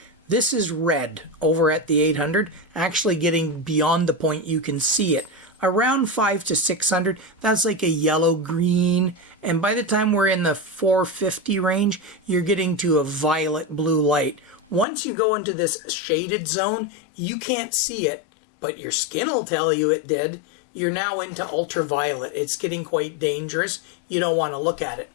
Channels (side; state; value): right; drops out; at 14.9 s